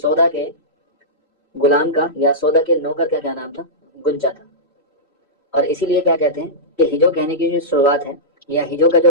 کے غلام کا یا سودا کے نوکر کا کیا نام تھا؟ گنجا تھا. اور اسی لیے کیا کہتے ہیں کہ ہجو کہنے کی جو شروعات ہے یا ہجو کا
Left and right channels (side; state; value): both; normal; correlation -0.15